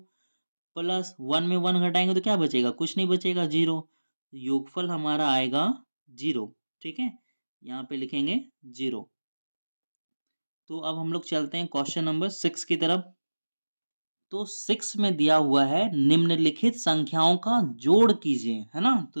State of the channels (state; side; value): inverted; both; correlation -1.00